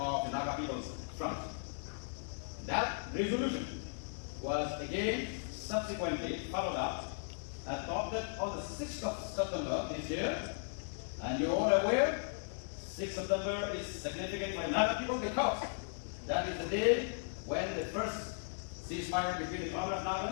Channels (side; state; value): right; silent; digital silence